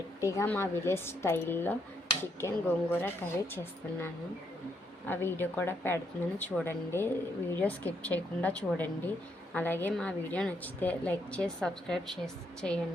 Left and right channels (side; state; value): both; normal; correlation 0.75